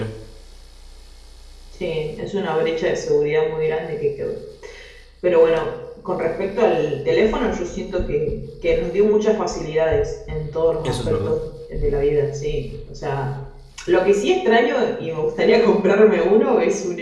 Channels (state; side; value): identical; both; correlation 1.00